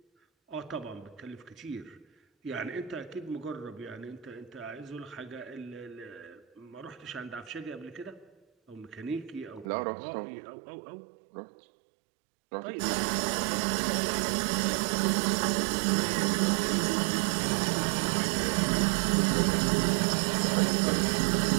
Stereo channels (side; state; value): left; drops out; at 9.7 s